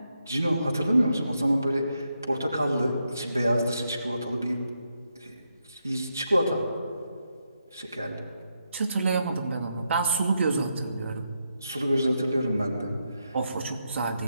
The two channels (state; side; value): inverted; both; correlation -0.82